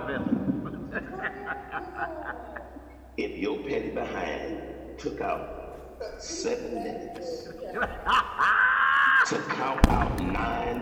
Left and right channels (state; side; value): identical; both; correlation 1.00